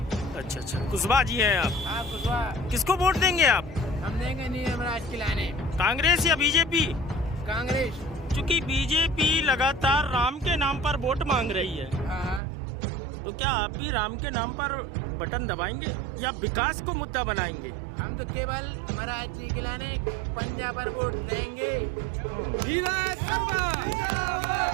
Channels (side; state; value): left; drops out; at 12.4 s